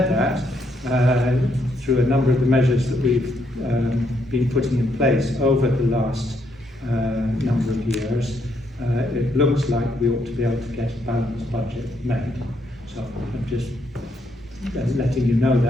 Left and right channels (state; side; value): normal; both; correlation 0.75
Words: that, through a number of the measures that we've been putting in place over the last number of years, it looks like we ought to be able to get a balanced budget made. So I'm just letting you know